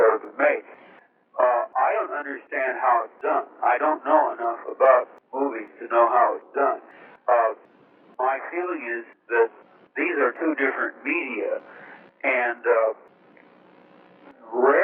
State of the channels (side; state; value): both; identical; correlation 1.00